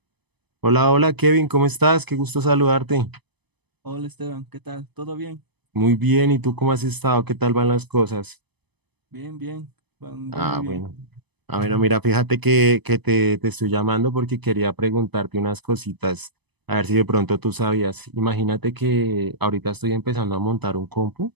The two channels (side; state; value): left; late; 0.99 ms